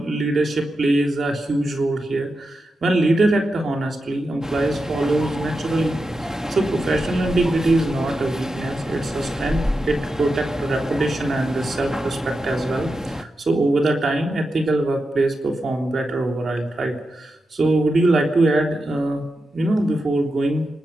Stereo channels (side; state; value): both; normal; correlation 0.89